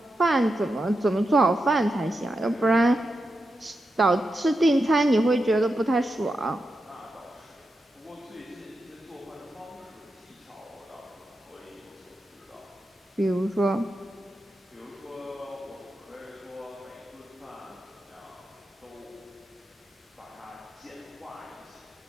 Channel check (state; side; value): normal; both; correlation 0.88